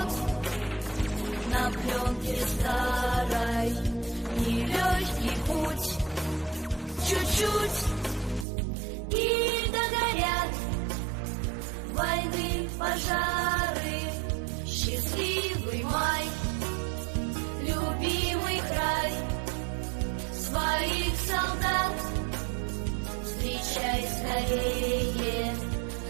на пленке старой, нелегкий путь, чуть-чуть, и догорят войны, пожары, счастливый май, любимый край, своих солдат встречай скорее,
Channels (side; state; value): left; drops out; at 8.5 s